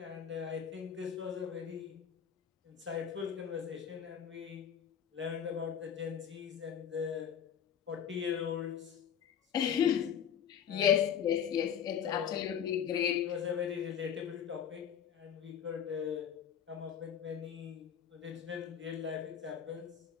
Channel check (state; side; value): quieter; right; 8.5 dB